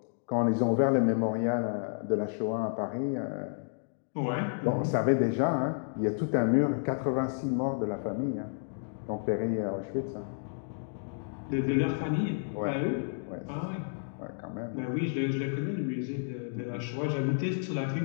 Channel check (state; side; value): silent; right; digital silence